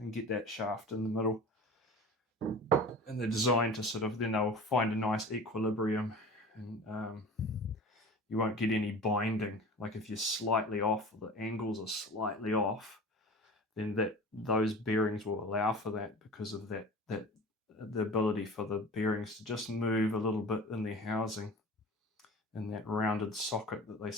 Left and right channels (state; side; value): normal; both; correlation 0.38